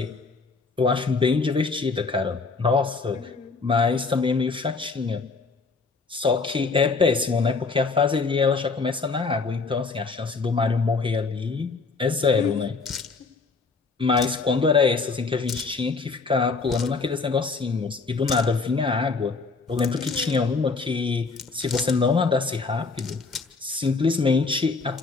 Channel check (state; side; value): quieter; right; 4.3 dB